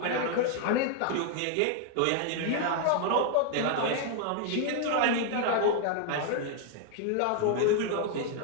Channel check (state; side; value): different; both; correlation 0.00